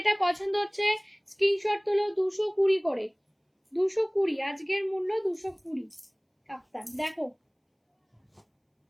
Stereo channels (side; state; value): both; identical; correlation 1.00